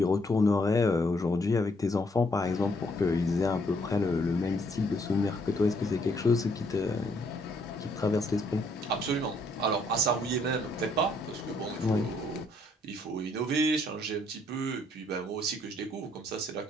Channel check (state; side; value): normal; both; correlation 0.69